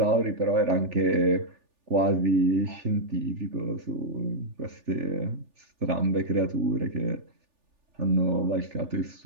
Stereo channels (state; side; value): late; left; 3.4 ms